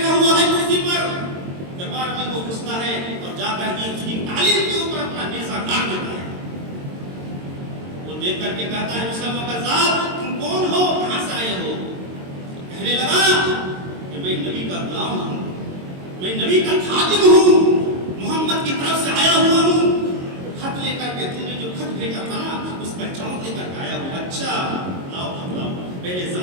ہوا ہے کرسی پر، دربار میں وہ اور جا کر کے اس کی تعلیم کے اوپر اپنا نیزہ گاڑ دیتا ہے. وہ دیکھ کر کے کہتا ہے مسلمہ کذاب تم کون ہو, کہاں سے آئے ہو؟ کہنے لگا کہ میں نبی کا غلام ہوں, میں نبی کا خادم ہوں, محمد کی طرف سے آیا ہوا ہوں. خط لے کر کے تم نے جو خط بھیجا تھا نا اس پر جواب لے کر کے آیا ہوں. اچھا لاؤ. پہلے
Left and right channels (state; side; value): late; left; 22 ms